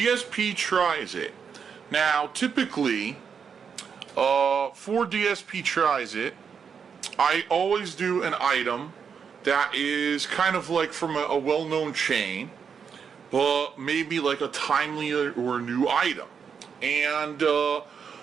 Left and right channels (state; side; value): quieter; left; 6.6 dB